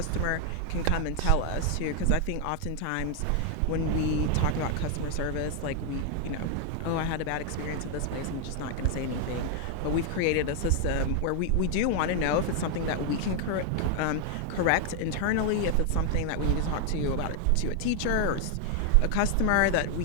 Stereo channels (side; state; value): both; different; correlation 0.00